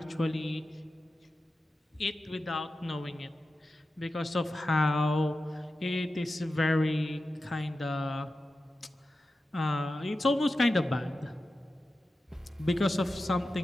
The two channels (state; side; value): normal; both; correlation 0.92